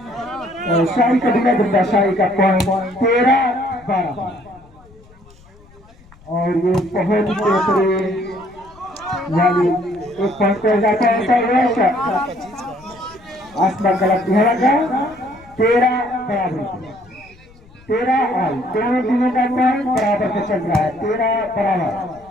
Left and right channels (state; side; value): noise; left; rumble, 26 dB below the sound